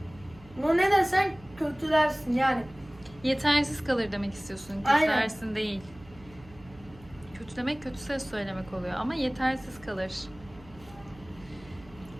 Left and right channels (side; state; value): right; noise; hum, 22 dB below the sound